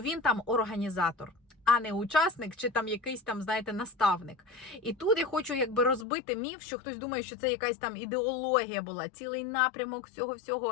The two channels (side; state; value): right; drops out; at 6.1 s